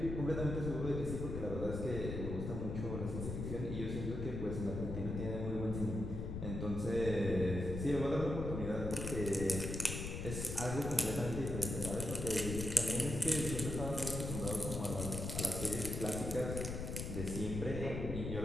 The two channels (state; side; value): noise; left; rumble, 4 dB below the sound